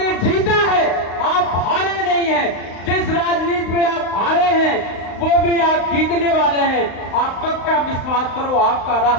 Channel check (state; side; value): late; right; 35 ms